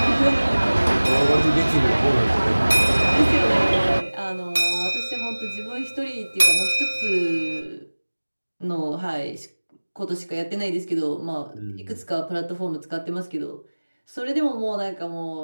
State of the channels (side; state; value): both; inverted; correlation -1.00